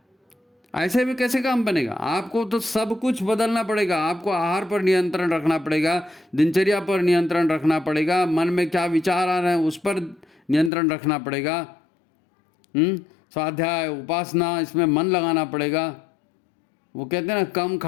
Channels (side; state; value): right; drops out; at 10.7 s